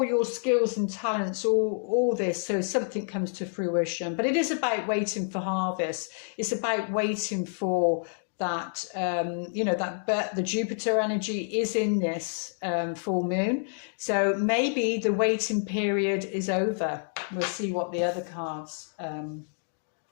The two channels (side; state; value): right; silent; digital silence